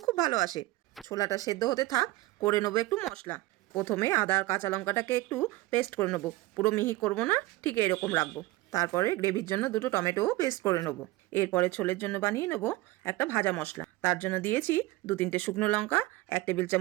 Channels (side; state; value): left; quieter; 18.8 dB